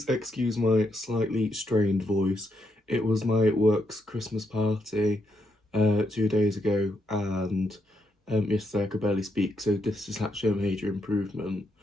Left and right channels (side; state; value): both; normal; correlation 0.79